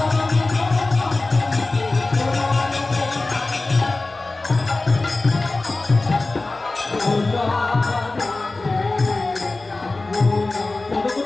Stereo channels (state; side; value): quieter; right; 3.2 dB